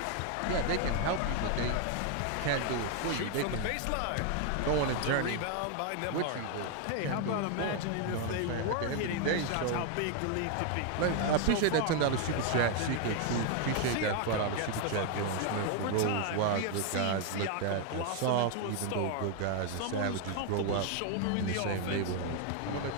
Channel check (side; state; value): both; different; correlation 0.01